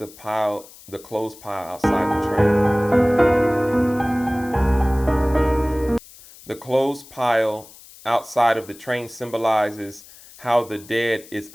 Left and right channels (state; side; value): noise; left; hiss, 21 dB below the sound